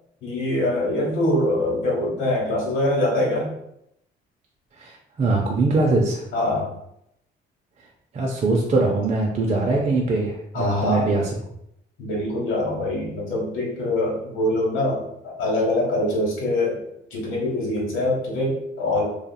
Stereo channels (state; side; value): normal; both; correlation 0.44